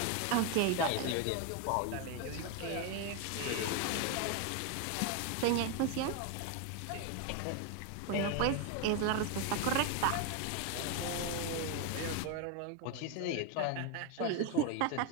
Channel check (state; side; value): different; both; correlation 0.01